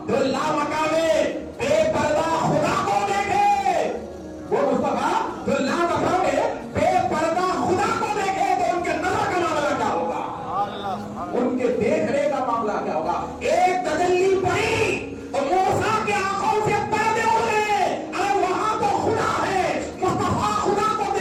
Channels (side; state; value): both; identical; correlation 1.00